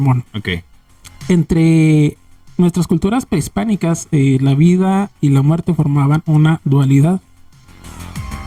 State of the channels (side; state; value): both; identical; correlation 1.00